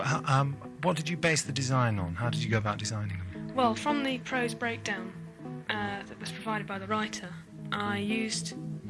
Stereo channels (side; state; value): both; identical; correlation 1.00